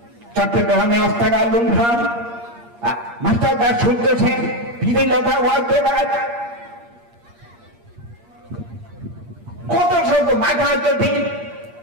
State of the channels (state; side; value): late; left; 8.6 ms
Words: চট্টগ্রামে অস্তাগার লুণ্ঠন, মাস্টার দাস সূর্য সেন, বিধিলতা ওয়ালদেবাজ, কত শত মাথা যদি